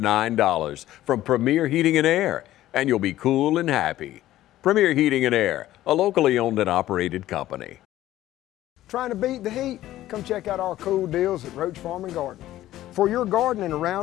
from Premier Heating and Air, and you'll be cool and happy. Premier Heating and Air, a locally owned and operated company. Trying to beat the heat? Come check out our cool deals at Roach Farm and Garden. For your garden and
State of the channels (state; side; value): quieter; right; 14.3 dB